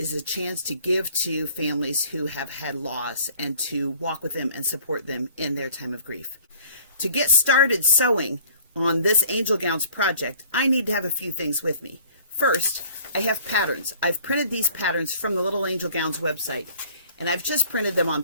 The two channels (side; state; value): both; inverted; correlation -0.52